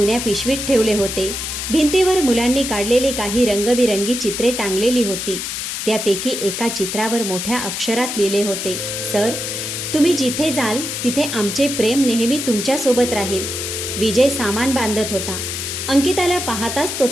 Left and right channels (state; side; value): noise; left; hiss, 4 dB below the sound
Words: पिशवीत ठेवले होते. भिंतीवर मुलांनी काढलेली काही रंगबिरंगी चित्रे टांगलेली होती. त्यापैकी एका चित्रावर मोठ्या अक्षरात लिहिले होते, सर, तुम्ही जिथे जाल तिथे आमचे प्रेम नेहमी तुमच्यासोबत राहील. विजय सामान बांधत होता. अंकिताला पाहताच तो